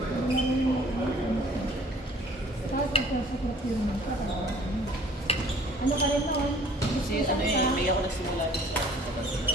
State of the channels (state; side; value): normal; both; correlation 0.53